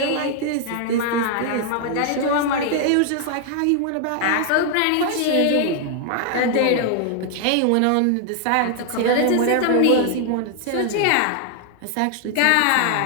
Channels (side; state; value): both; different; correlation 0.00